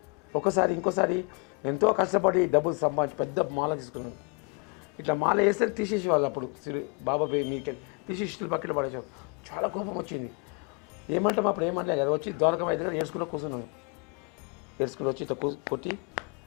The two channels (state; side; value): quieter; right; 33.7 dB